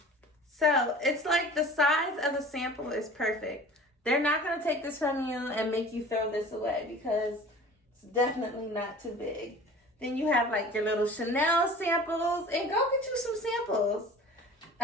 So it's like the size of the sample is perfect. They're not going to take this from you and make you throw this away because it's definitely not too big. Then you have like your little Chanel samples, and go get you some samples.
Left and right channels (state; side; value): normal; both; correlation 0.42